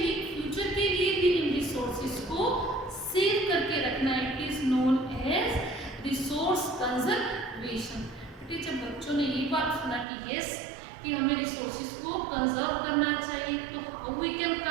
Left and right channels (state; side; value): drops out; left; at 10.1 s